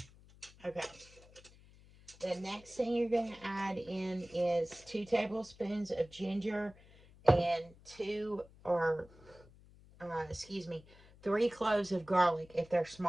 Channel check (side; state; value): left; noise; hum, 24 dB below the sound